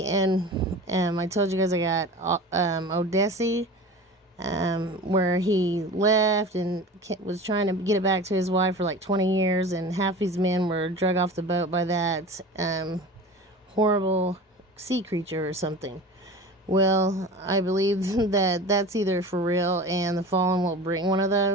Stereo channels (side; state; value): both; normal; correlation 0.35